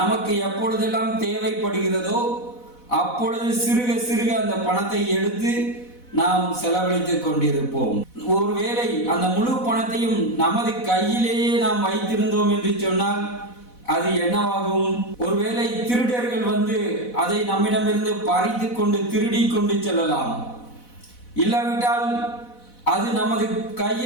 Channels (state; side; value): late; right; 4.1 ms